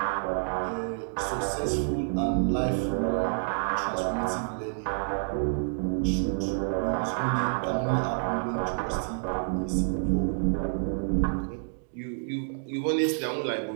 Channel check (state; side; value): silent; left; digital silence